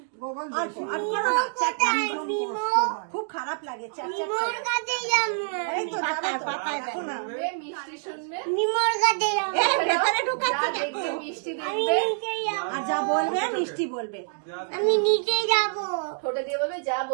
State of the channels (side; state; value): left; silent; digital silence